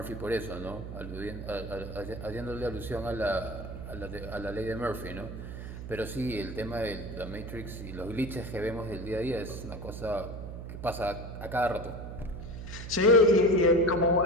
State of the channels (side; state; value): right; noise; hum, 8 dB below the sound